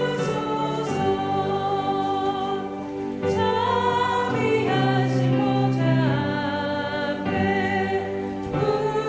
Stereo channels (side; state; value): both; identical; correlation 1.00